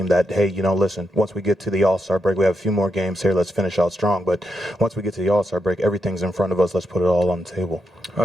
that, hey, listen, once we get to the All-Star break, we have a few more games here, let's finish out strong. But once we get to the All-Star break, everything's in front of us, let's put it all on the table.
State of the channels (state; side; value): normal; both; correlation 0.83